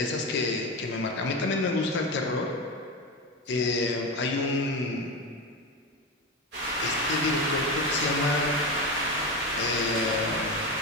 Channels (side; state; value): both; normal; correlation 0.18